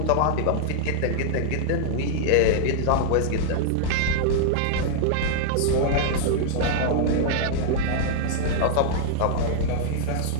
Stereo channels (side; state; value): both; different; correlation -0.01